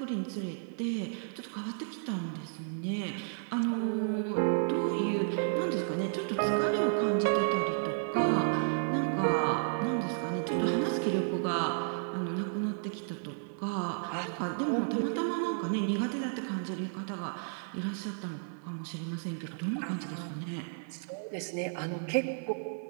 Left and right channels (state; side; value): silent; left; 56 dB below the other